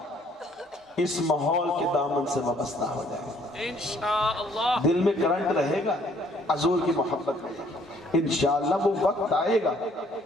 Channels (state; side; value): normal; both; correlation 0.62